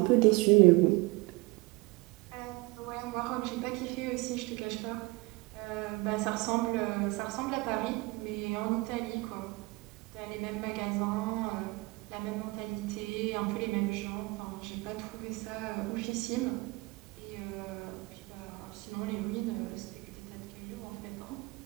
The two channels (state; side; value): quieter; left; 24.2 dB